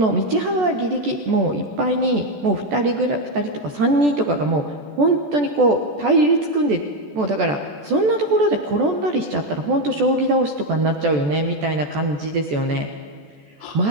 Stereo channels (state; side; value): late; left; 14 ms